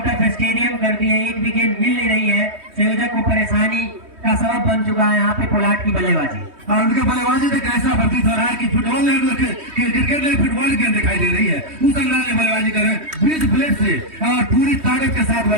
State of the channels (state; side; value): late; left; 3.2 ms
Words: ऑफ स्टेडियम कर दिए। एक विकेट मिल नहीं रही है, संयोजक को परेशानी का सबब बन चुका है यहाँ पे पोलार्ड की बल्लेबाजी। और उनके बल्लेबाजी से कैसा प्रतीत हो रहा है कि फुटबॉल क्रिकेट में फुटबॉल गेंद दिखाई दे रही है। उस अंदाज में बल्लेबाजी कर रहे हैं, बीच प्लेट से और पूरी ताकत के साथ